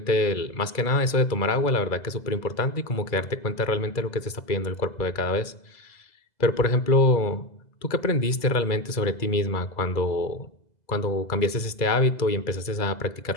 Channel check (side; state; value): right; late; 2.0 ms